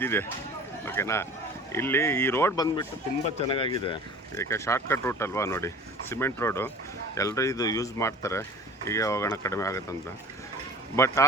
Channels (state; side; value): normal; both; correlation 0.43